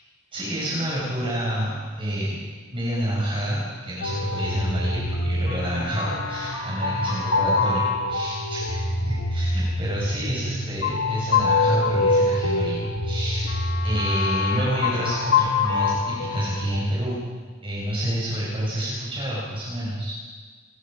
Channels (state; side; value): normal; both; correlation 0.29